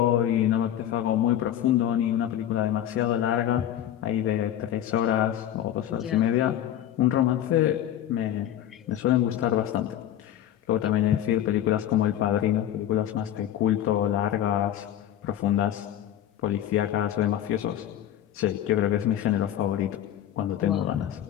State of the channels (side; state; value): right; quieter; 11.3 dB